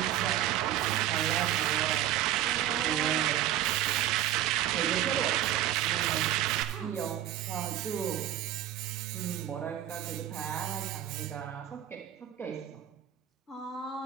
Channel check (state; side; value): quieter; left; 12.0 dB